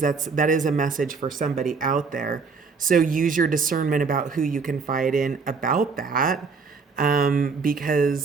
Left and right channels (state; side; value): quieter; left; 4.9 dB